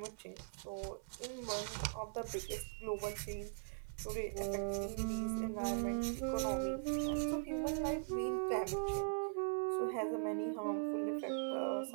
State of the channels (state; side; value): silent; left; 51 dB below the other